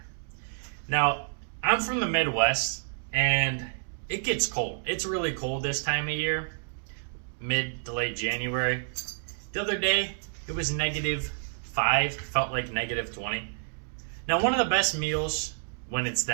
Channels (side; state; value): left; silent; digital silence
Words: Now, I'm from the Midwest, and it gets cold. It's really cold this time of year, mid to late January. The other day, it was -5, felt like -20. Now, one of the best meals when it's